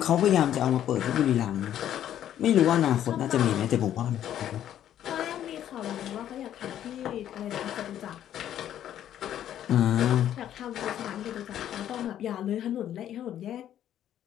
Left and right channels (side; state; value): right; quieter; 11.0 dB